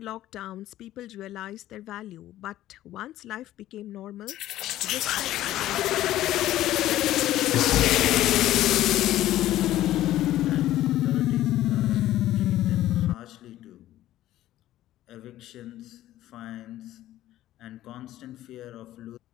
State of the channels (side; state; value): right; quieter; 14.0 dB